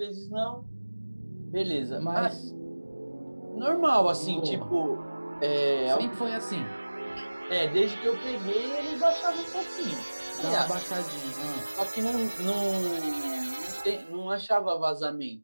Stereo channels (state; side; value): inverted; both; correlation -1.00